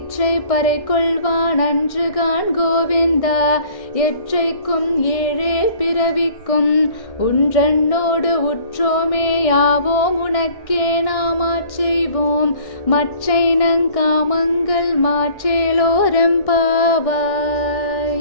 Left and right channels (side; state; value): right; late; 1.6 ms